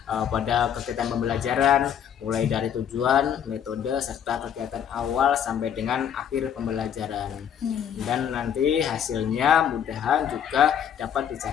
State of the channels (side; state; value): right; quieter; 8.9 dB